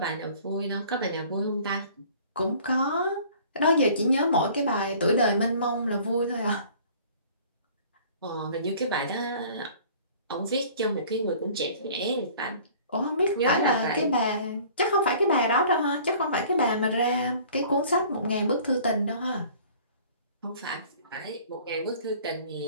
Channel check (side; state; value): both; inverted; correlation -0.50